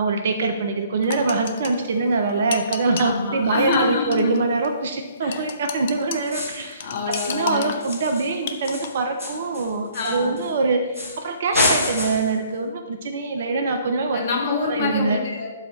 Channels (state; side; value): inverted; both; correlation -0.60